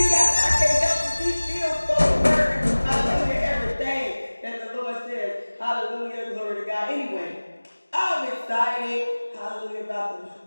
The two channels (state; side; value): inverted; both; correlation -1.00